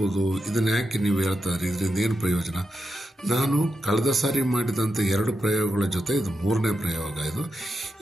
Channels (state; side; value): normal; both; correlation 0.87